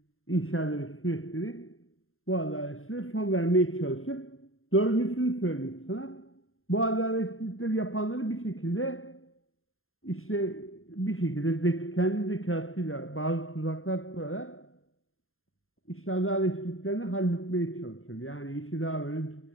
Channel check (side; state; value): right; late; 0.61 ms